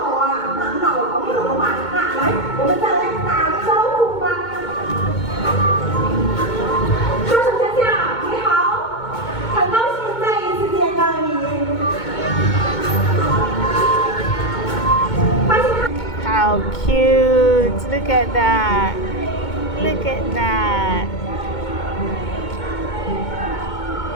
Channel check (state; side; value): late; right; 2.2 ms